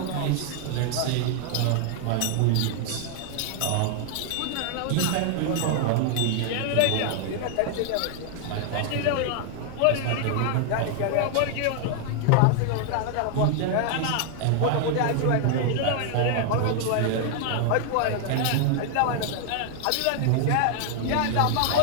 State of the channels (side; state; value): both; different; correlation 0.00